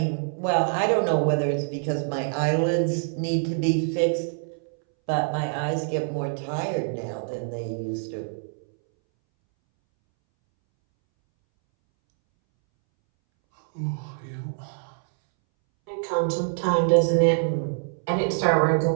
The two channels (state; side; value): silent; left; 62 dB below the other